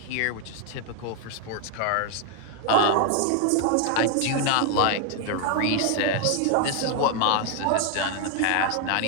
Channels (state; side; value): different; both; correlation 0.00